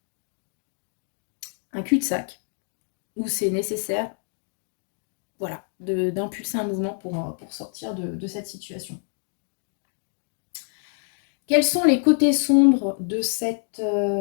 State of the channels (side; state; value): right; silent; 61 dB below the other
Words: cul-de-sac où c'est nécessaire, voilà, d'impulser un mouvement pour sortir de cette situation. Quels sont les côtés sombres de cette